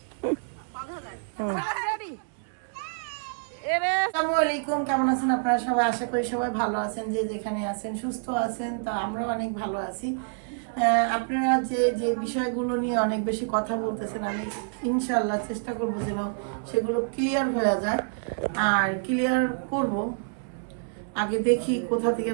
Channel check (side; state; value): left; silent; digital silence